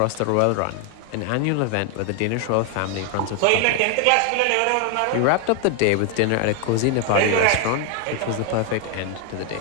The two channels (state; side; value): different; both; correlation 0.01